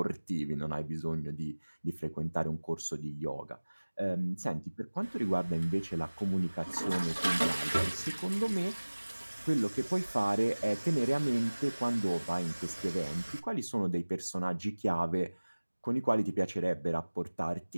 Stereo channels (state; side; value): inverted; both; correlation -1.00